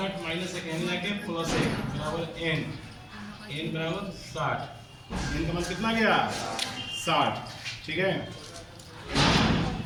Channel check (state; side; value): identical; both; correlation 1.00